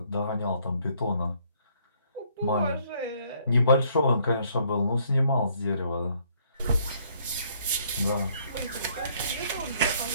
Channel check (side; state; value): both; inverted; correlation -0.65